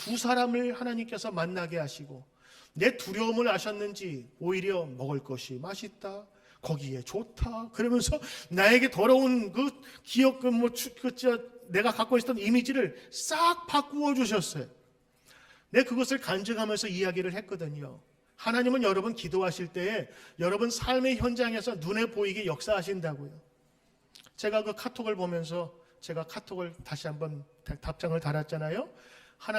사람을 하나님께서 만나게 하시고, 내 두려움을 아셨는지 오히려 먹을 것이 맛있다, 거기에 좋다, 그러면서 나에게 더러운 그 기억, 내가 갖고 있었던 이미지를 싹 바꾸어 주셨어요. 내가 그것을 간증하면서 이야기를 했거든요. 하나님은 여러분 기도하실 때에 여러분 삶의 현장에서 눈에 보이게 역사하신다고요. 제가 그 카톡을 보면서 제가 카톡을 다시 한번 답장을 달았잖아요.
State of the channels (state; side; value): identical; both; correlation 1.00